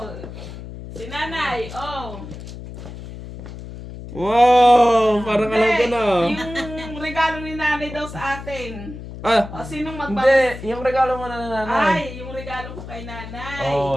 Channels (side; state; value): left; noise; hum, 12 dB below the sound